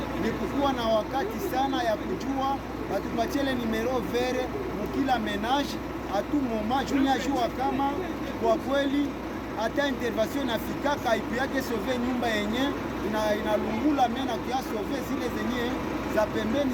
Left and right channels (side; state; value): both; identical; correlation 1.00